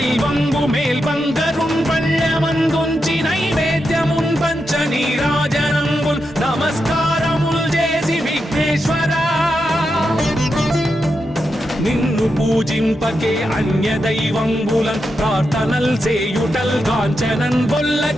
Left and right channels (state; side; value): normal; both; correlation 0.86